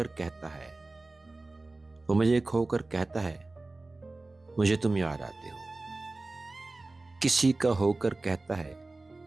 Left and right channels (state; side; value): quieter; left; 3.2 dB